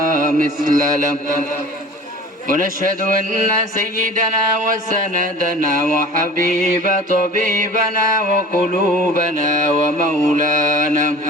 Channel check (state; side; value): normal; both; correlation 0.42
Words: مثل له ونشهد أن سيدنا وسندنا وحبيب طبيبنا وقلوبنا ومولانا